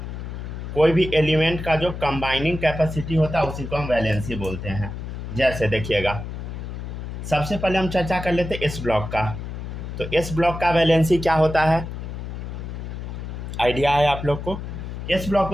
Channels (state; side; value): noise; left; hum, 7 dB below the sound